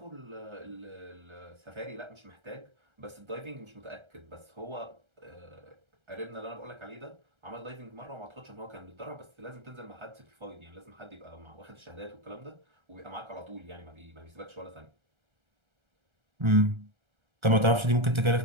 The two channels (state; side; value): late; left; 1.3 ms